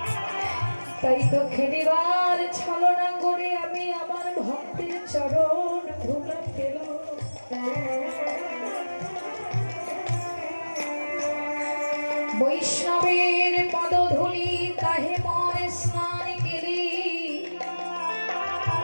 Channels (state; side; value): inverted; both; correlation -1.00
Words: তাই তো খেলিবার ছলনা করে আমি আমার ভক্তের চরণ ধুলা পেলাম। বৈষ্ণবের পদধূলি তাহে মন স্নান কেলি,